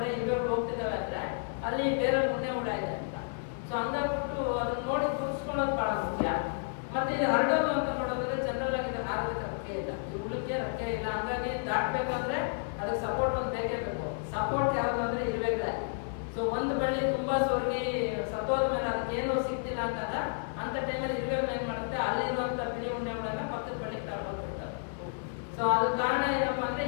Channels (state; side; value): silent; right; 57 dB below the other